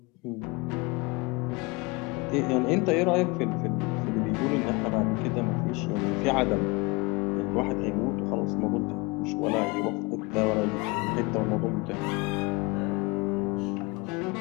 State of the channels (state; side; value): quieter; right; 26.1 dB